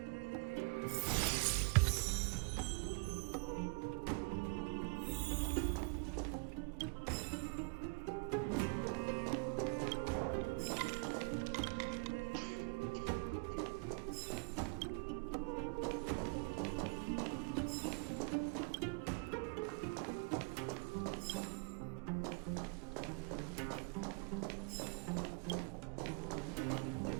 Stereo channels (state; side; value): quieter; left; 33.1 dB